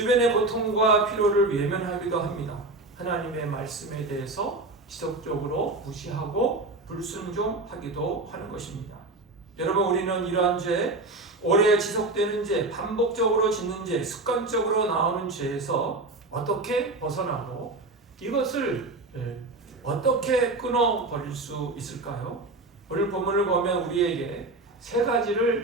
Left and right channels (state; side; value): quieter; left; 3.0 dB